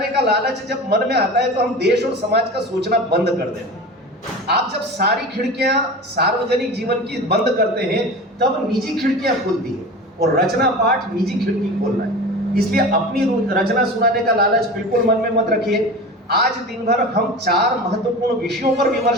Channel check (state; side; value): normal; both; correlation 0.33